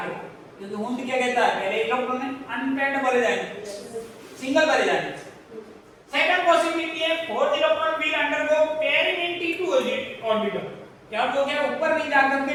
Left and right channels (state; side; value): identical; both; correlation 1.00